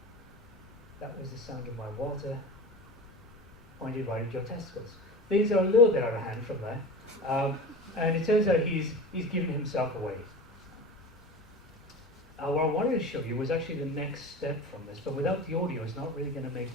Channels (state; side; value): normal; both; correlation 0.31